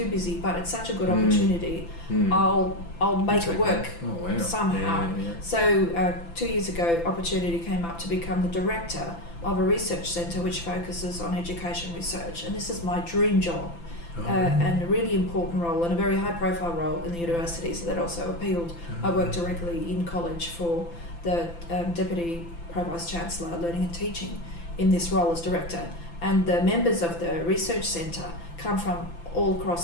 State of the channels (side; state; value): right; late; 5.9 ms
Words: busy, but it's such a good opportunity, I'll make it work somehow. Yeah. So 2 years ago, opportunity came up to become the director of a research centre which focuses on education research, and this is my dream job. And a really important role and a very high profile role in the university, so that also appealed. I work directly in college for the Deputy Pro-Vice Chancellor Learning and Teaching in this role as director, and the members of the research centre come from all